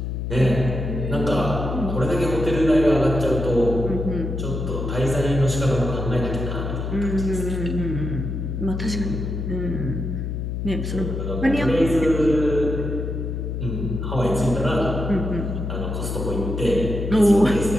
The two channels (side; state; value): left; noise; hum, 4 dB below the sound